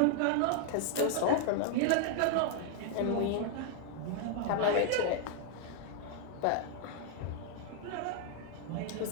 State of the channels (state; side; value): different; both; correlation 0.00